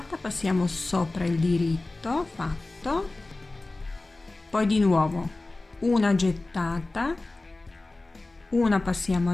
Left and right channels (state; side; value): quieter; right; 3.0 dB